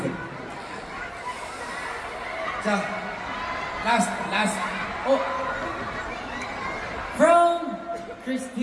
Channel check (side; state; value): both; identical; correlation 1.00